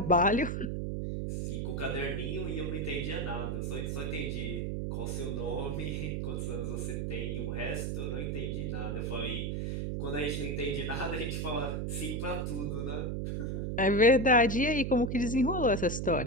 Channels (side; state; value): right; noise; hum, 1 dB below the sound